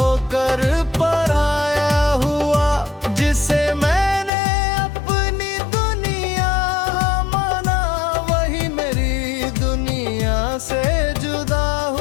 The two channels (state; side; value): drops out; right; at 4.3 s